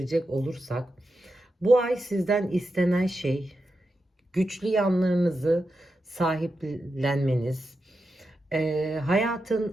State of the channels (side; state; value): both; normal; correlation 0.88